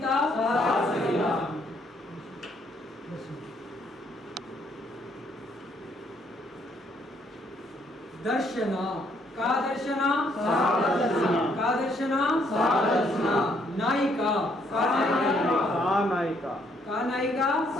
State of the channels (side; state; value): both; normal; correlation 0.69